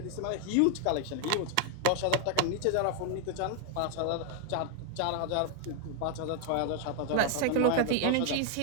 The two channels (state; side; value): different; both; correlation 0.00